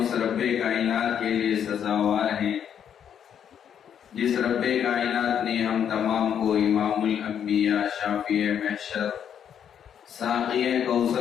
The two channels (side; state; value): right; quieter; 8.7 dB